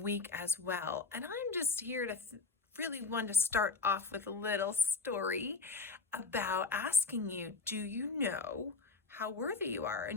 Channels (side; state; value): right; quieter; 4.2 dB